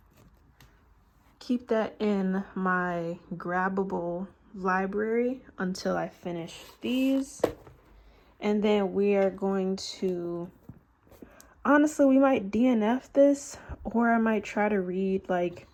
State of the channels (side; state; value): both; identical; correlation 1.00